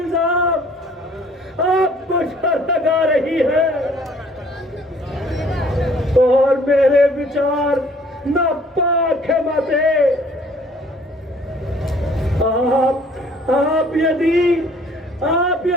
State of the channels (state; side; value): normal; both; correlation 0.57